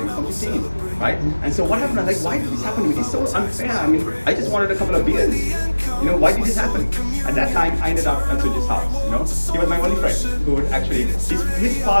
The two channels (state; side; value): inverted; both; correlation -1.00